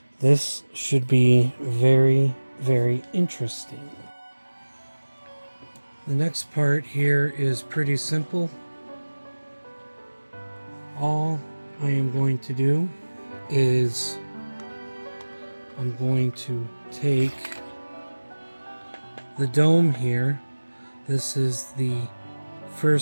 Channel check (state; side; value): inverted; both; correlation -1.00